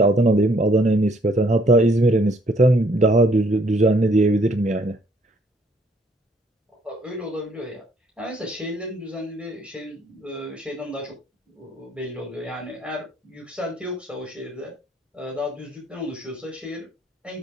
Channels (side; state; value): both; normal; correlation 0.65